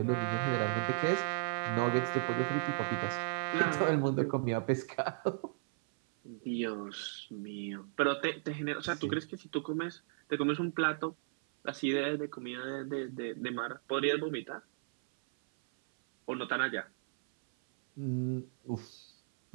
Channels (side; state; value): left; silent; 54 dB below the other